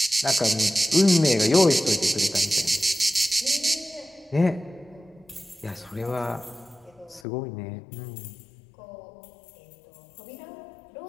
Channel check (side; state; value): right; drops out; at 7.2 s